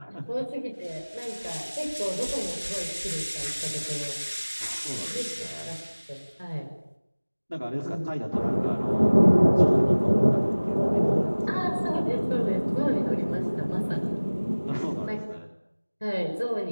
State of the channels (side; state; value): both; inverted; correlation -1.00